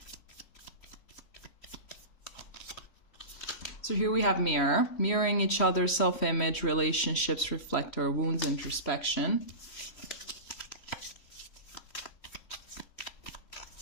So here we have mirror. Mirroring each other, self-image, relationships reflect our wounds, introspection.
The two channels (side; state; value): right; late; 3.1 ms